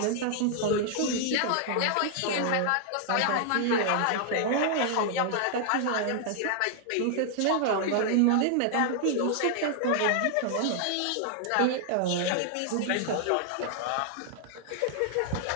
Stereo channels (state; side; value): different; both; correlation 0.00